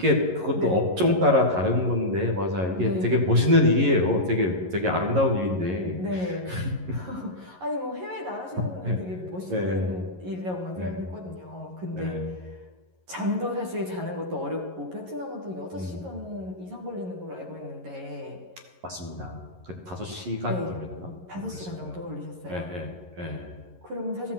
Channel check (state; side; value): late; left; 11 ms